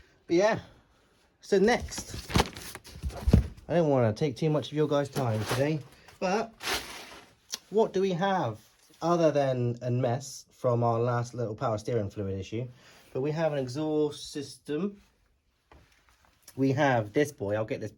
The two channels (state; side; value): identical; both; correlation 1.00